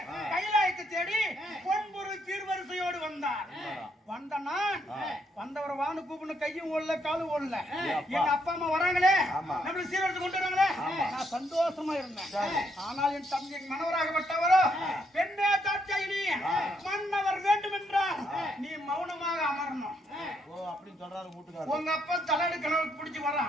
கைலாயத்தை தேடி பொன்பொருள் சீர்வரிசையோடு வந்தார். வந்த நான் வந்தவரை வானு கூப்பிடணும். கையும் ஓடல காலும் ஓடல. என் அப்பா அம்மா வராங்களே நம்மளுக்கு சீர்வரிசை கொண்டு வராங்களே நான் சந்தோஷமா இருந்தேன். ஆனால் என் தந்தை மனவராகப்பட்டவரோ பெண்ணே தாட்சாயினி மன்னவர் வேண்டும் என்றால் நீ மௌனமாக அமரணும். அப்படின்னு சொல்றாரு வீட்டுக்காரர். உங்க அப்பா தலையடு கனவு பிடிச்சு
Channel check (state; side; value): normal; both; correlation 0.74